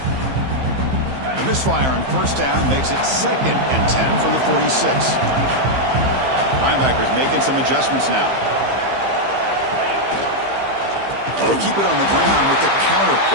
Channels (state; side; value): late; left; 15 ms